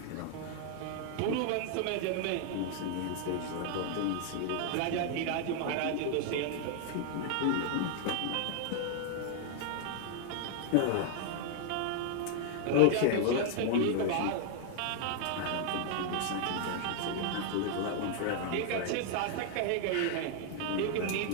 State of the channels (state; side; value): different; both; correlation 0.00